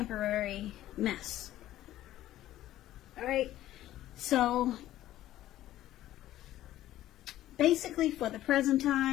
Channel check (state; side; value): quieter; right; 14.0 dB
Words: mess. All right, so basically for the present